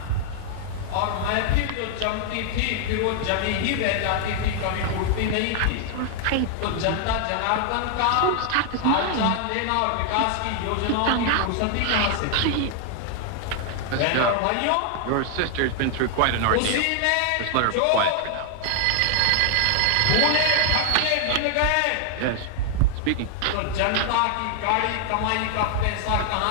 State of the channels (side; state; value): both; different; correlation 0.00